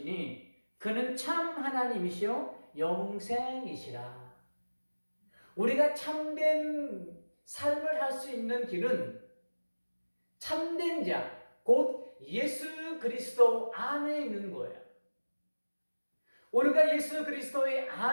그는 참 하나님이시요 영생이시라. 우리가 참된 삶을 할 수 있는 길은 참된 자, 곧 예수 그리스도 안에 있는 거예요. 우리가 예수 그리스도의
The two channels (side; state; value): both; inverted; correlation -1.00